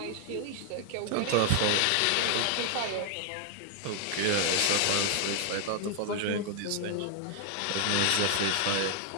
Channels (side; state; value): both; different; correlation 0.00